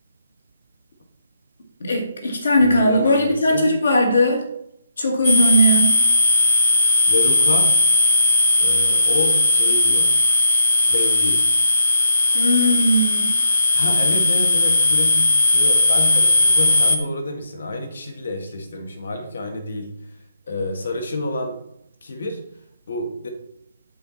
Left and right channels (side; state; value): both; inverted; correlation -0.72